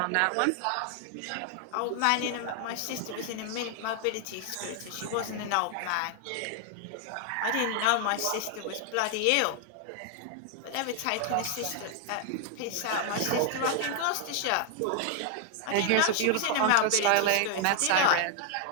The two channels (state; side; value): different; both; correlation 0.00